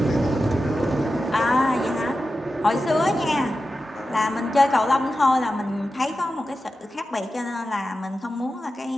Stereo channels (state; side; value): normal; both; correlation 0.92